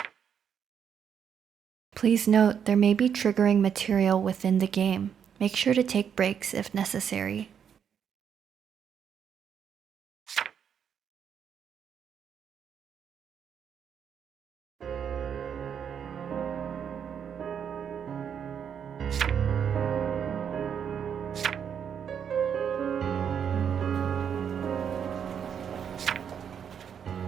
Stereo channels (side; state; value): left; quieter; 8.0 dB